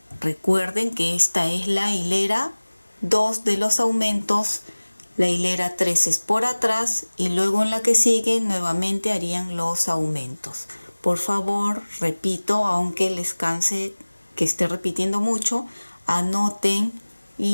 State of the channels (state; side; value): inverted; both; correlation -1.00